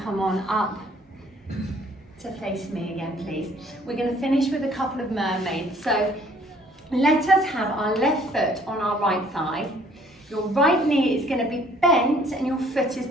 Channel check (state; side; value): normal; both; correlation 0.59